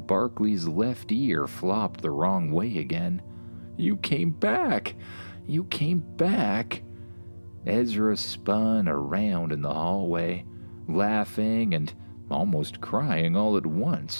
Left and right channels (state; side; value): inverted; both; correlation -1.00